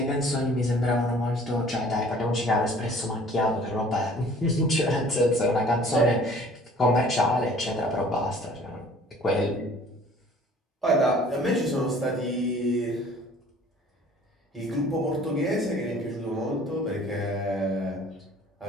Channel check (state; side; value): normal; both; correlation 0.52